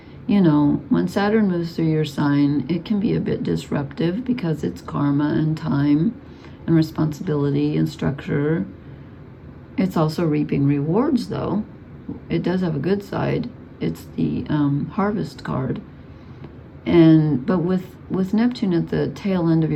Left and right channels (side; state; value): both; identical; correlation 1.00